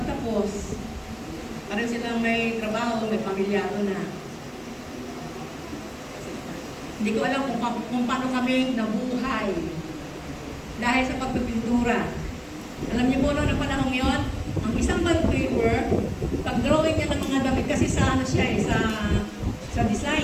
Parang silang may trabaho, may pamilyado na. Hindi ko alam kung paano kami nabuhay dahil sa pagpipintura. Alam niyo po noong panahon yon, ang isang bond paper, pag-drawing niya ng mga damit, kasi sa ano siya sa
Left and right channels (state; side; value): identical; both; correlation 1.00